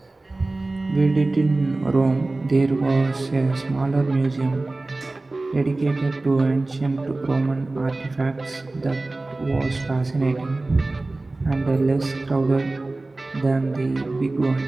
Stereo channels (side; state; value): left; quieter; 3.1 dB